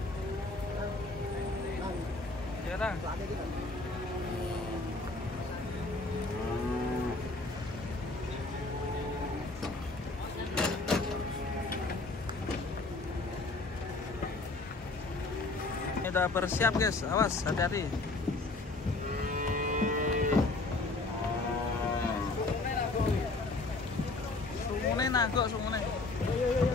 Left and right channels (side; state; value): right; quieter; 3.3 dB